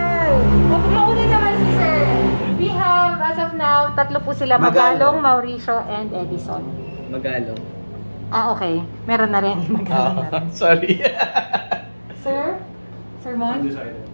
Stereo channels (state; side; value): inverted; both; correlation -1.00